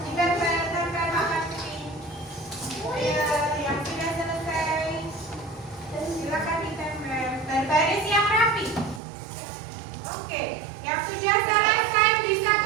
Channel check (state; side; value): drops out; left; at 9.0 s